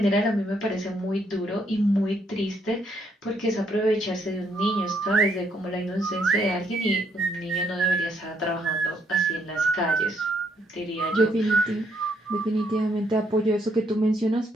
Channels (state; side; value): normal; both; correlation 0.72